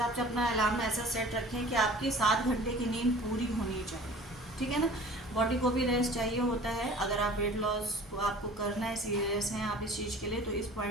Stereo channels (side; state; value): both; normal; correlation 0.45